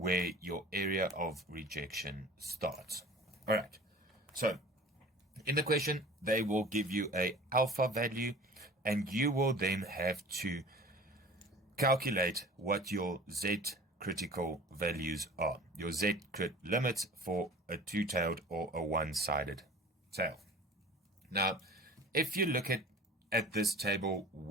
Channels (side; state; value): both; normal; correlation 0.42